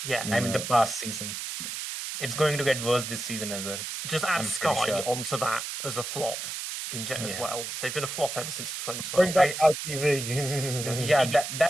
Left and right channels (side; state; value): right; noise; hiss, 6 dB below the sound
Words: Yeah. I mean, the past season. It's going to get worse this season as well. Just add I'm pretty Sky sure. onto that as a flop as Yeah. well. They've been a flop ever since Bring 2012. back ITV. Yeah,